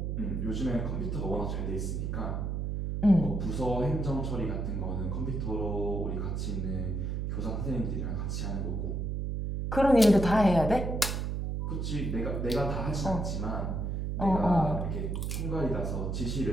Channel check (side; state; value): right; noise; hum, 1 dB below the sound